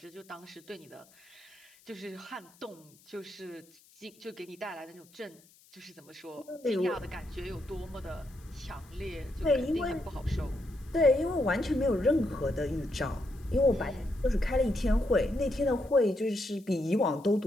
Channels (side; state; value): left; noise; hiss, 27 dB below the sound